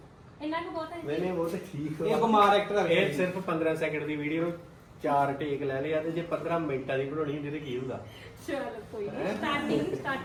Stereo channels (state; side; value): identical; both; correlation 1.00